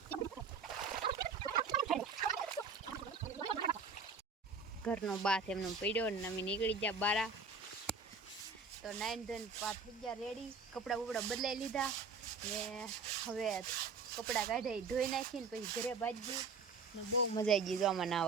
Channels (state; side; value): quieter; left; 4.6 dB